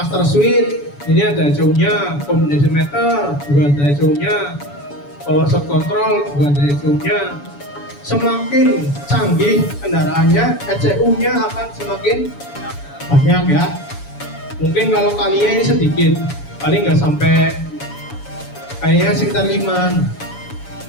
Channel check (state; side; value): late; right; 7.0 ms